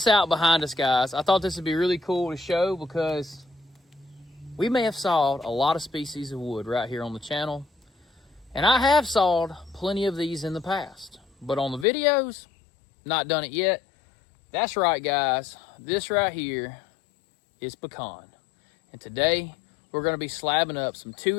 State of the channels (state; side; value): drops out; right; at 11.9 s